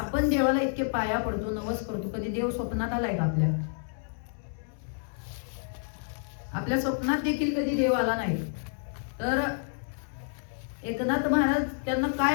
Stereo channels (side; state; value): right; silent; 58 dB below the other